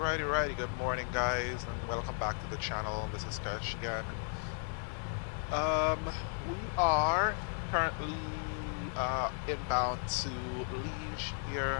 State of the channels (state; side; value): silent; right; 54 dB below the other